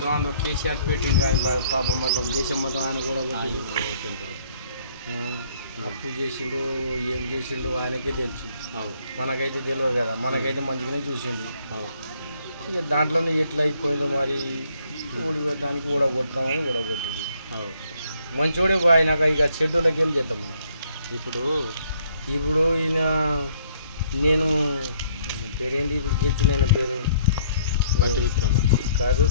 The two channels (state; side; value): inverted; both; correlation -0.65